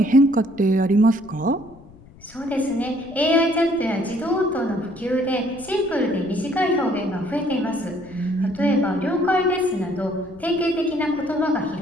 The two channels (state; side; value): noise; left; rumble, 23 dB below the sound